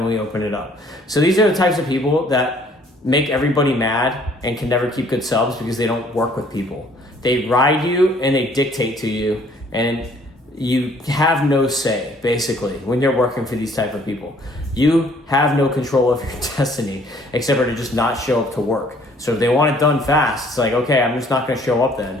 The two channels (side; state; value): both; normal; correlation 0.59